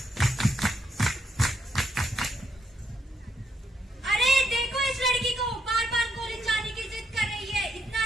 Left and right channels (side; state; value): both; normal; correlation 0.77